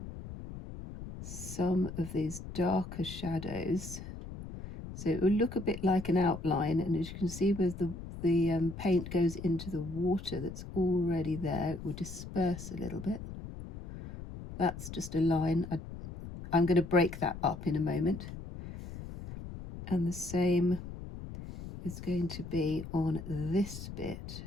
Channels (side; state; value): left; noise; rumble, 11 dB below the sound